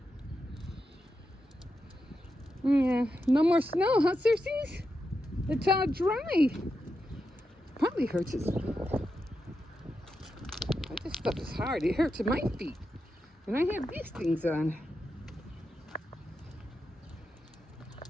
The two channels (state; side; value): normal; both; correlation 0.87